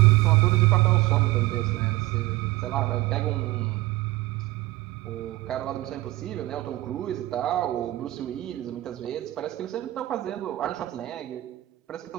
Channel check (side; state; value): left; quieter; 17.9 dB